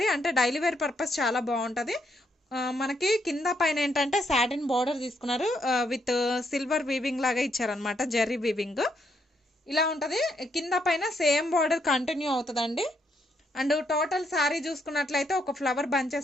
అంటే డైలీ వేర్ పర్పస్ చాలా బాగుంటుంది. మనకి కింద పైన ఏంటంటే సాటిన్ బార్డర్ తీసుకున్నారు, విత్ సిల్వర్ వీవింగ్ లాగా ఇచ్చారనమాట, జెర్రీ వీవింగ్ ఇలా ఉంటుంది. కింద పైన సేమ్ బార్డర్ కంటిన్యూ అవుతుందండి. అండ్ టోటల్ శారీ చూసుకున్నట్లయితే ఒక ఫ్లవర్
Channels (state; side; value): normal; both; correlation 0.75